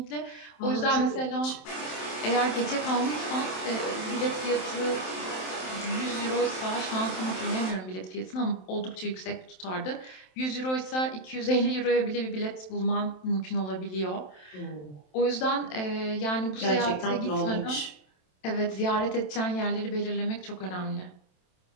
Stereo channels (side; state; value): right; late; 27 ms